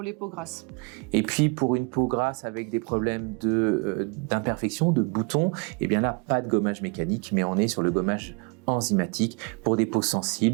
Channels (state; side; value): quieter; left; 33.4 dB